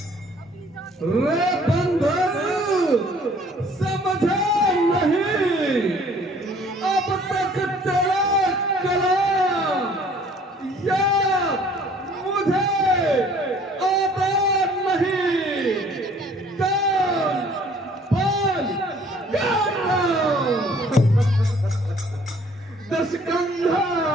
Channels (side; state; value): both; normal; correlation 0.56